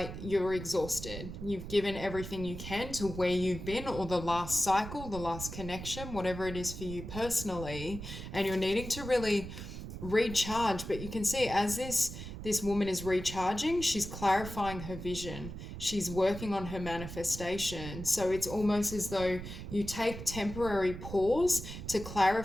you're exhausted. You've given everything you can to where you've been, or the last cycle, the last connection, whatever it is for you personally, and you're needing to really recharge. But you can see as this woman is recharging, she's clarifying her vision, she's working on her manifestation. So it's almost as though you take temporary pause to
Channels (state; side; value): noise; right; rumble, 9 dB below the sound